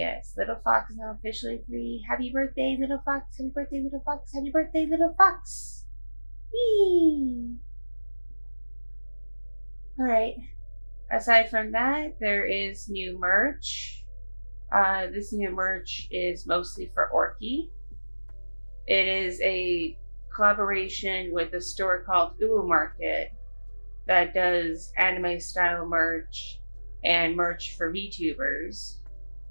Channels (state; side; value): inverted; both; correlation -1.00